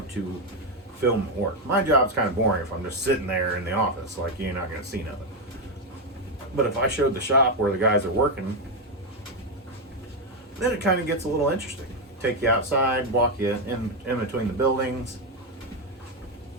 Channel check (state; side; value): normal; both; correlation 0.05